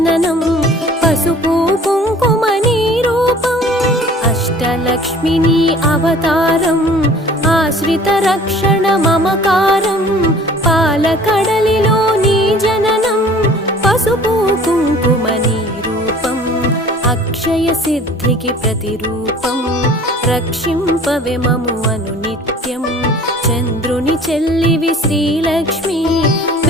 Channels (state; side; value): normal; both; correlation 0.48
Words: పసుపు కుంకుమ నీ రూపం అష్టలక్ష్మిని అవతారం ఆశ్రిత రక్షణ మమకారం పాలకడలిలో నీ జననం పసుపు కుంకుమ నీ రూపం అక్షయ సిద్ధికి ప్రతిరూపం రక్షింపవే మము అనునిత్యం చంద్రుని చెల్లివి శ్రీలక్ష్మి